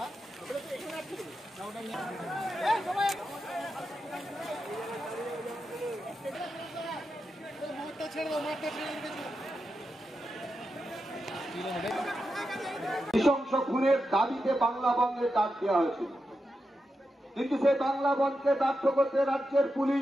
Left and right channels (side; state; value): both; normal; correlation 0.88